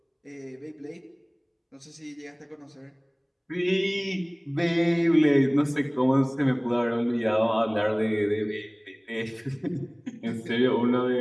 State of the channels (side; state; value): both; identical; correlation 1.00